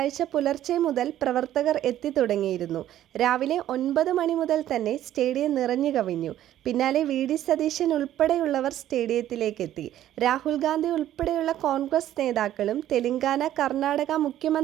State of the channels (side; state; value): left; quieter; 12.4 dB